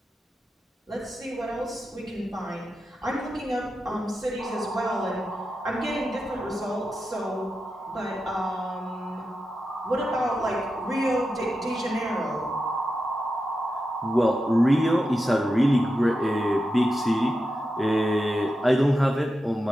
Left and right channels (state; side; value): normal; both; correlation 0.89